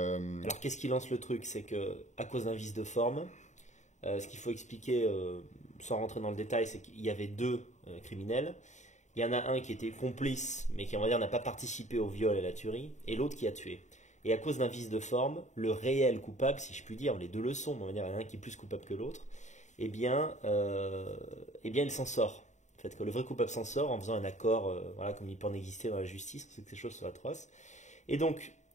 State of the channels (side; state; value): right; late; 0.34 ms